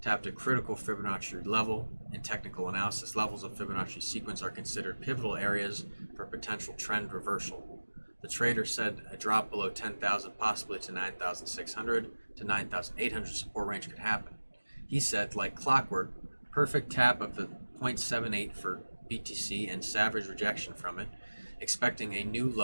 a critical Fibonacci level. In technical analysis, levels of Fibonacci sequence are considered pivotal areas for potential trend reversal. The trader said a drop below 10,000, possibly to 9,600 to 9,800 support range could happen. He said, like clockwork, perfect tap of the 0.78 for BTC and savage rejection from it, expecting a new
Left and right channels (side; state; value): both; inverted; correlation -1.00